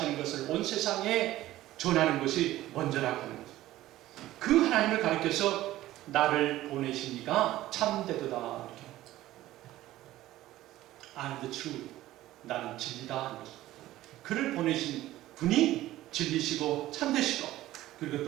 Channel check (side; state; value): left; quieter; 15.3 dB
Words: 것을 온 세상에 전하는 것이 먼저라고 하는 거죠. 그 하나님을 가리켜서 나를 보내신 이가 참되도다. I'm the truth. 나는 진리다 하는 거죠. 그를 보내신 분이 진리시고 참되시고 그리고